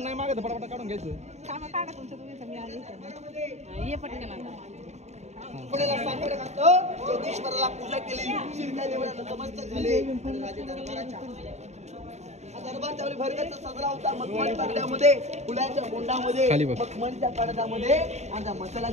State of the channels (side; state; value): left; late; 0.32 ms